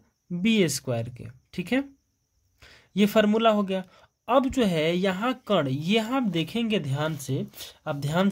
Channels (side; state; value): both; identical; correlation 1.00